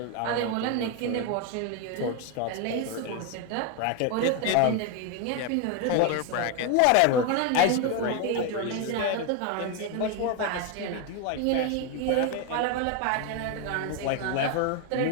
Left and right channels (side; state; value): both; different; correlation 0.01